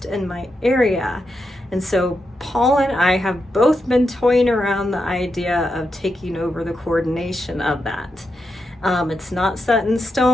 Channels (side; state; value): both; normal; correlation 0.85